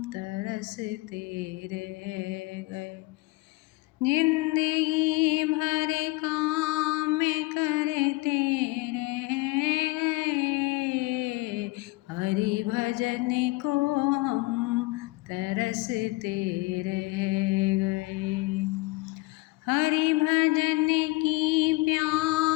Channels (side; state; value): right; quieter; 22.4 dB